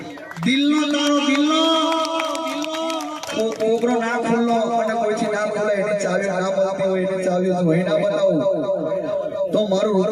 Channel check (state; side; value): identical; both; correlation 1.00